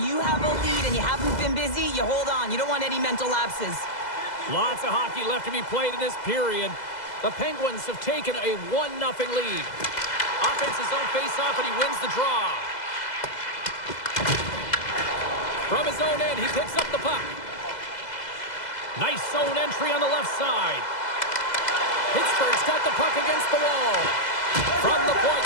you have a lead and you haven't been busy, you hold on. You don't want any mental lapses. Lots of hockey left to be played in this period. The Penguins have taken a 1-0 lead. Offense his own face-off, and he wins the draw. From his own end, he picks up the puck. Nice zone entry on the left side. Pittsburgh's got the puck against the wall. From the point,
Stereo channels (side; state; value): right; late; 2.0 ms